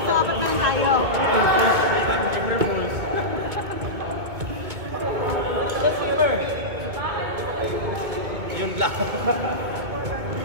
So, apat na lang tayo. Yun lang.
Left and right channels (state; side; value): late; left; 2.2 ms